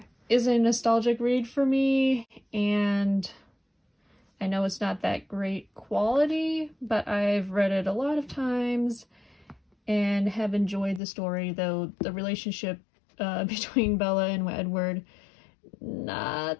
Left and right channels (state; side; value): drops out; right; at 11.0 s